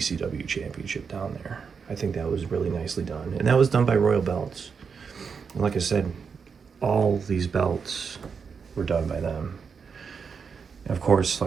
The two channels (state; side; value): quieter; left; 5.9 dB